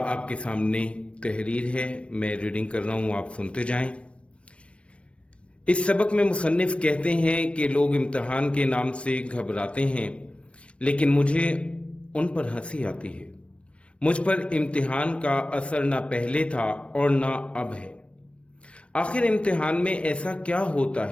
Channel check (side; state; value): right; late; 0.061 ms